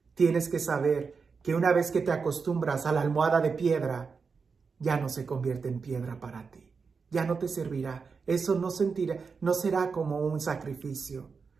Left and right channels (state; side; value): quieter; left; 5.2 dB